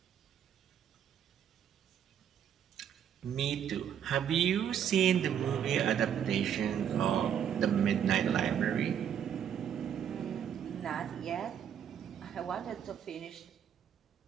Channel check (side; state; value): left; quieter; 8.9 dB